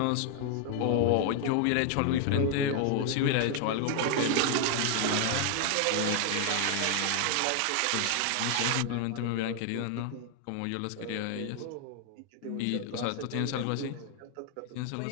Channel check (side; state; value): both; different; correlation 0.00